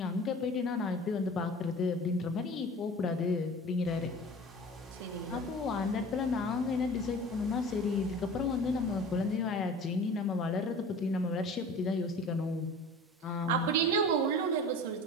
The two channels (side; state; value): both; normal; correlation 0.39